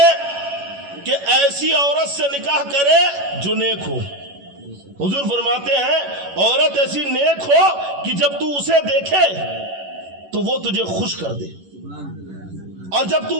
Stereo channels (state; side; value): late; left; 11 ms